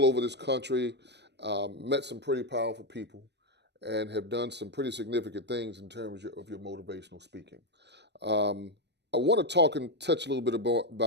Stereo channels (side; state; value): left; late; 0.50 ms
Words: over this country, met some pretty powerful people, and have done some pretty significant things in terms of your motivational speaking. I want to talk and touch a little bit